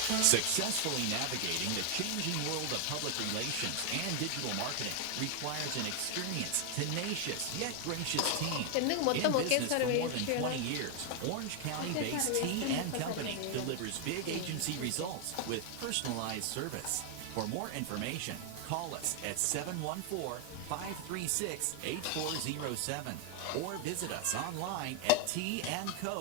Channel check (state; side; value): different; both; correlation 0.00